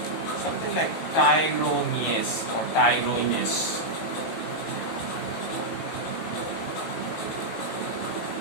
Something like tyrosinase or tyrosinase.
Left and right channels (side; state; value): right; late; 18 ms